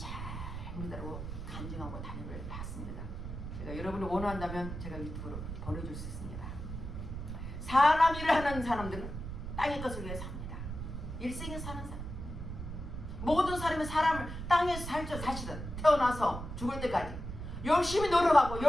믿으라고 간증하고 다니를 봤습니다. 제가 여러분이 원한다면 제가 유튜브로 보내줄 수 있습니다. 사람 일을 하는 사람들은 땅의 것을 위해 삽니다. 일생에 사는 사람. 모든 사람이 사람을 땅에서 살죠. 사실은 태어나서 죽을 때까지 열심히 노력하고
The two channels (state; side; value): noise; right; rumble, 7 dB below the sound